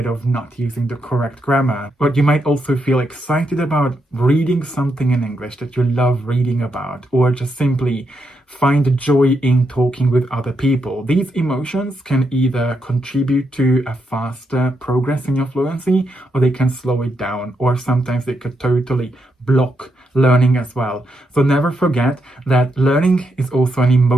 of not using the correct grammar. But you might also feel excited about reading something in English that you love reading about, or just simply find joy in talking with other people. These emotions can either contribute to a faster progress in your fluency, or they can slow it down, or sometimes they could totally block learning as well. So never forget that learning is also an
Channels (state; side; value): normal; both; correlation 0.81